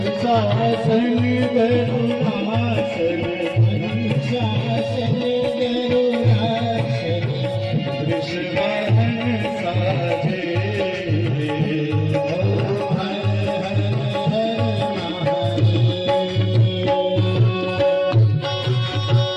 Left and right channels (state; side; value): identical; both; correlation 1.00